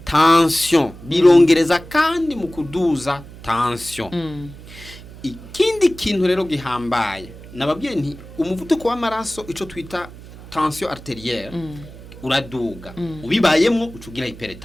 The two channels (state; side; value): noise; right; hum, 17 dB below the sound